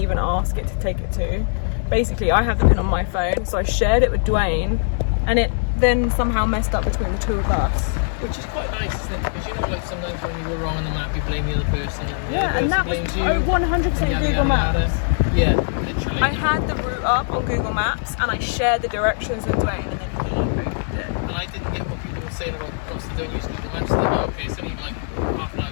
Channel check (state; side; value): silent; right; digital silence